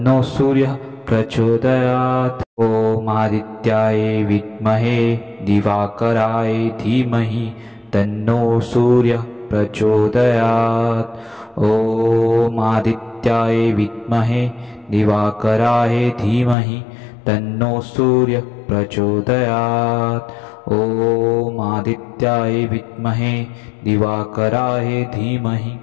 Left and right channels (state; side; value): drops out; right; at 16.6 s